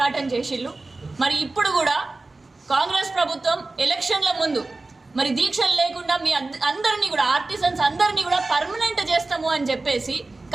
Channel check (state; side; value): quieter; left; 3.3 dB